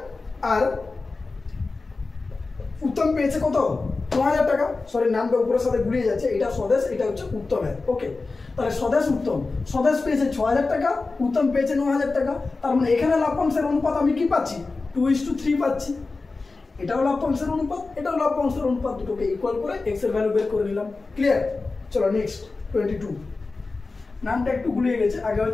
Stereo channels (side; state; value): right; quieter; 3.8 dB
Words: আর উত্তম পেয়েছে কত? 9,000 টাকা। নামটা উপরের সাথে গুলিয়ে যাচ্ছে, এটা স্বদেশ, এটা হচ্ছে উত্তমের। ওকে, তাহলে স্বদেশ পেয়েছে 6,000 টাকা, উত্তম পেয়েছে 9,000 টাকা। তার মানে এখানে লাভ্যাংশের অনুপাত আমি কি পাচ্ছি? 2:3 পাচ্ছি। এটাও লাভ্যাংশের অনুপাত, এটাও লাভ্যাংশের অনুপাত, দুটোকে ইকুয়াল করে এক্স এর ভ্যালু বের করে নিলাম। ক্লিয়ার? চলো নেক্সট 22। নামটা একটু গুলিয়ে গেছে, আগে